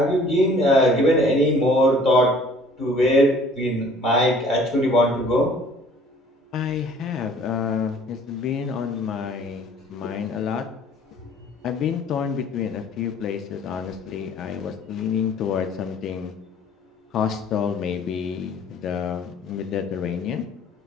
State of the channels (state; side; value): normal; both; correlation 0.53